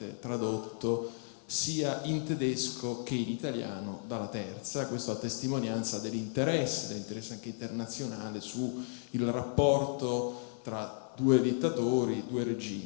tradotto sia in tedesco che in italiano dalla Terza, questo a testimonianza dell'interesse anche internazionale su il rapporto tra due dittatori, due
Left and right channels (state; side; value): silent; right; 55 dB below the other